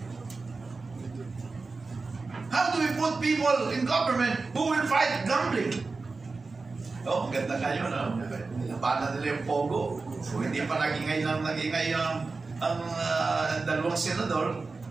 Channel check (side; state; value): left; quieter; 4.0 dB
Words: How do we put people in government who will fight gambling? Oh, maganda kayo, no? Labanan nila yung pogo. So, hindi pa nagingay ang dalawang senador,